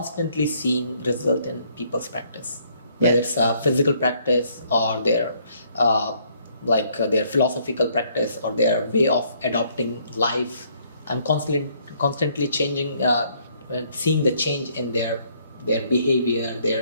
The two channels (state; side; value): inverted; both; correlation -0.67